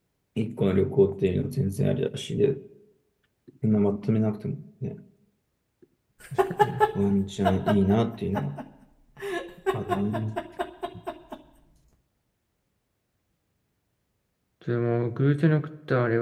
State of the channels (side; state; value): both; identical; correlation 1.00